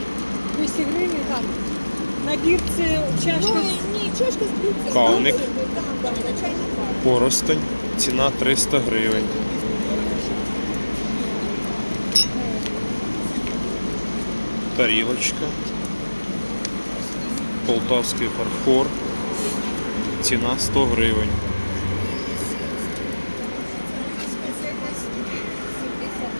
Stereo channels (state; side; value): inverted; both; correlation -1.00